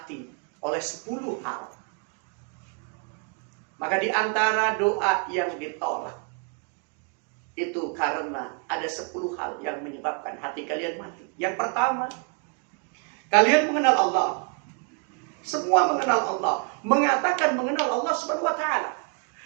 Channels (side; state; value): left; quieter; 35.9 dB